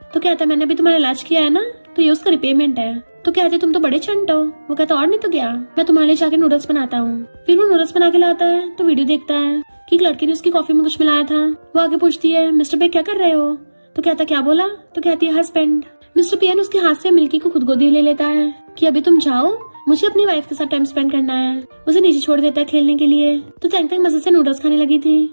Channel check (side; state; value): both; inverted; correlation -1.00